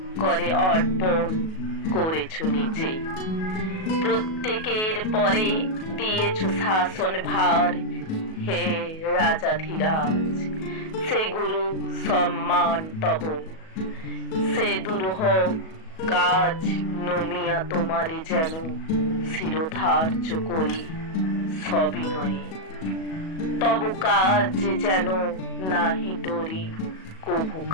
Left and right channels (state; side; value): late; right; 37 ms